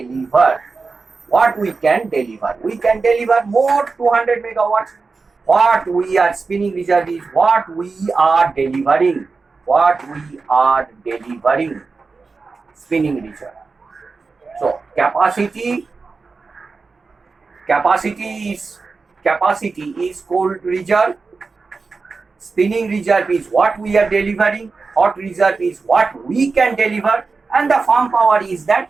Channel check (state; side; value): quieter; left; 4.3 dB